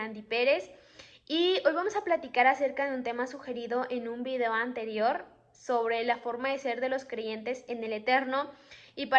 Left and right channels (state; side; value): identical; both; correlation 1.00